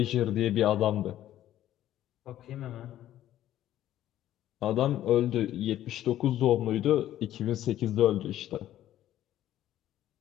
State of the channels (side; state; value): right; quieter; 12.7 dB